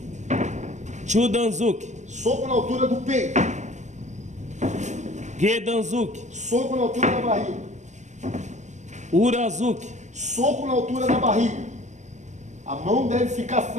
Chudanzuki. Soco na altura do peito. Gedanzuki. Soco na altura da barriga. Urazuki. Soco na altura da barriga. A mão deve ficar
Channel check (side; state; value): left; late; 0.34 ms